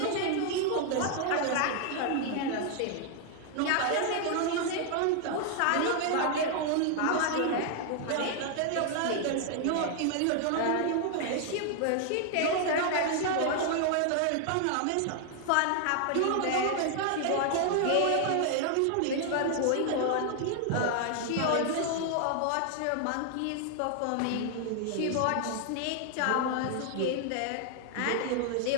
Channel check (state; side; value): different; both; correlation 0.00